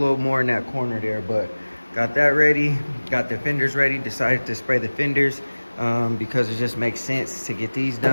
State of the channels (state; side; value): inverted; both; correlation -1.00